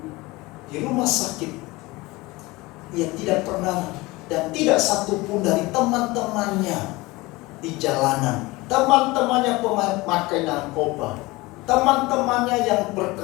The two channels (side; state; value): right; quieter; 21.8 dB